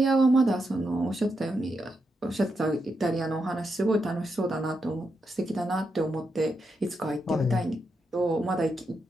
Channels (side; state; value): both; normal; correlation 0.84